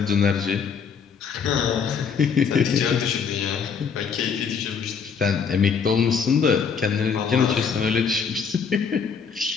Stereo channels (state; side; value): quieter; right; 6.3 dB